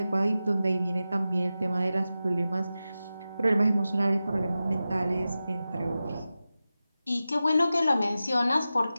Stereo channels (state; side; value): inverted; both; correlation -0.94